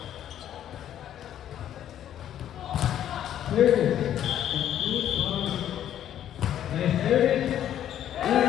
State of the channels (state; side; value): quieter; right; 10.9 dB